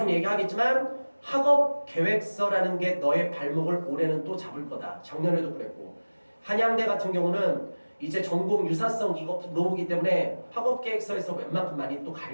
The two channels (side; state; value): both; inverted; correlation -1.00